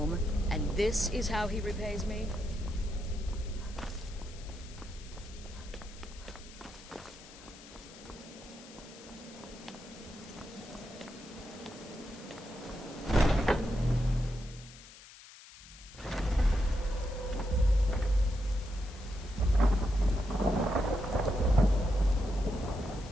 and this is how he repays me?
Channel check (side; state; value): left; noise; hiss, 19 dB below the sound